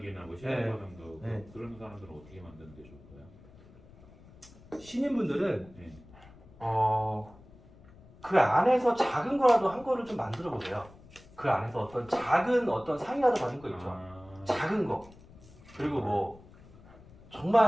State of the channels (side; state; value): left; noise; rumble, 22 dB below the sound